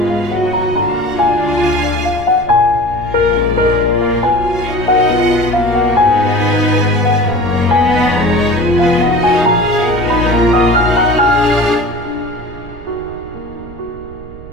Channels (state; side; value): noise; right; rumble, 17 dB below the sound